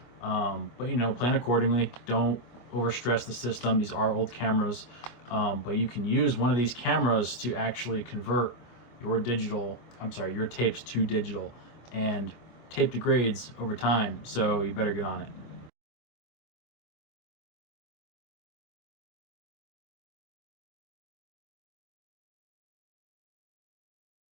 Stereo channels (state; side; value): late; right; 25 ms